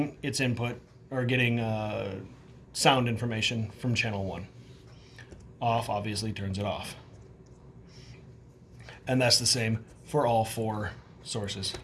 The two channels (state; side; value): identical; both; correlation 1.00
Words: its input or getting sound information from channel 1. Off obviously turns it off. And that's the same for all 4 sources.